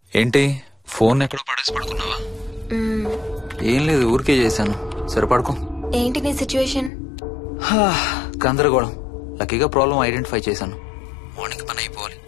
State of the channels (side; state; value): right; drops out; at 6.9 s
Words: ఏంటి phone ఎక్కడో పడేసి పడుకున్నావా? ఏం లేదు, ఊరికే చేశాను. సరే పడుకో. ఏంటి నీ సిచ్యువేషన్? గందరగోళం. లక్కీగా ప్రాబ్లం ఐడెంటిఫై చేశాను. మార్నింగ్ పని అయిపోవాలి.